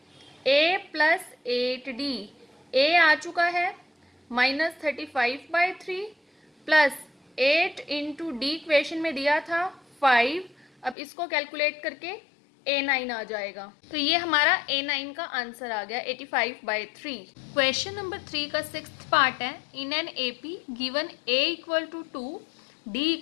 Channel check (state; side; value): drops out; right; at 11.0 s